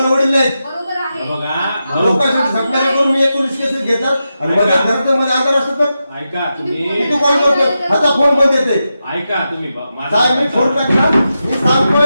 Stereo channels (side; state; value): both; inverted; correlation -0.89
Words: वडील नाहीत. लोकांसाठी सत्कार करून मी 19 केसेस घेतात आणि माझ्या घरात मध्ये आजार असतो तर ऐका तुम्ही तू कॉल करतो आता फोन बंद येते. ऐका तुम्ही साहेब मी फोन टाकला मी सांगतोय